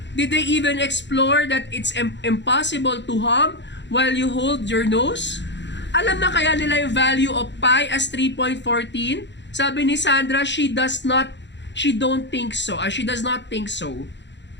Did they even explore that it's impossible to hum while you hold your nose? Alam na kaya nila yung value of pi as 3.14? Sabi ni Sandra, she does not think so.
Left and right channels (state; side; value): late; right; 0.52 ms